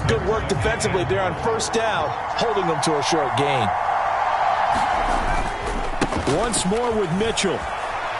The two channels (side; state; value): both; identical; correlation 1.00